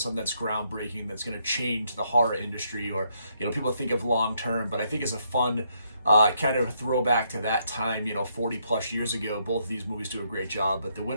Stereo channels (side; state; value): both; inverted; correlation -0.75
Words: that's groundbreaking, that's going to change the horror industry or, people think of long term. But I think it's a fun kind of a throwback to that time, 40 plus years ago. Both of these movies do a great job, but the